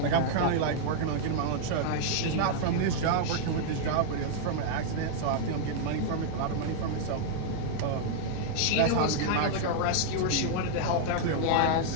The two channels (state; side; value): different; both; correlation -0.01